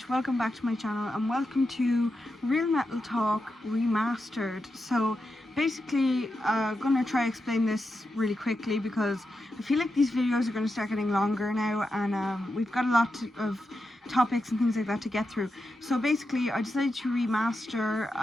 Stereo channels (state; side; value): normal; both; correlation 0.88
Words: Welcome back to my channel and welcome to Real Metal Talk Remastered. So basically I'm gonna try to explain this really quickly because I feel like these videos are going to start getting longer now, and we've got a lot of topics and things like that to get through. So basically I decided to remaster